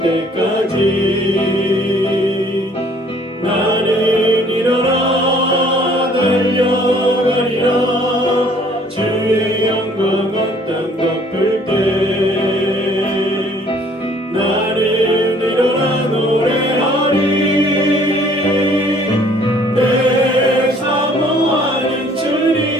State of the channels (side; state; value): both; normal; correlation 0.58